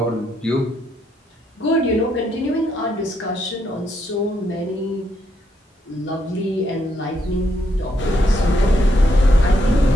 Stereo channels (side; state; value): both; normal; correlation 0.76